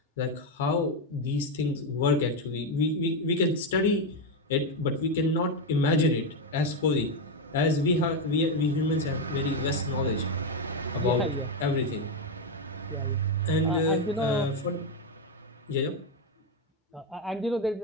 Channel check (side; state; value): both; normal; correlation 0.07